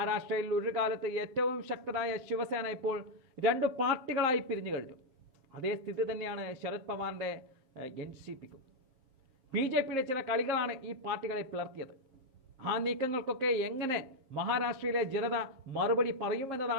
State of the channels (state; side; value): late; left; 7.5 ms